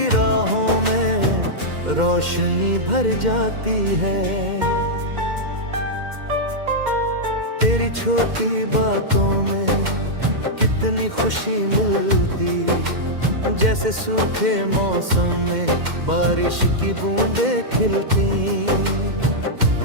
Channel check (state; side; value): late; left; 2.1 ms